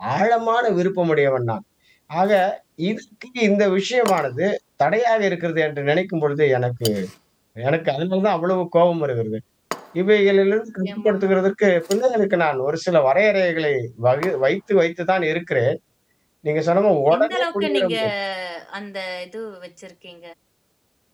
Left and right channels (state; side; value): identical; both; correlation 1.00